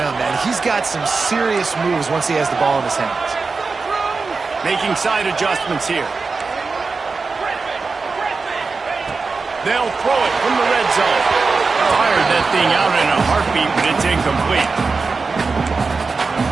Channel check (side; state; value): left; quieter; 4.4 dB